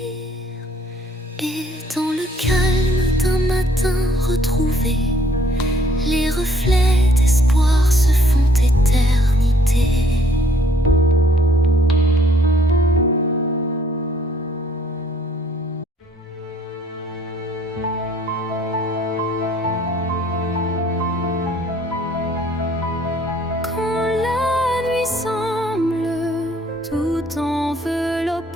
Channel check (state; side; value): normal; both; correlation 0.62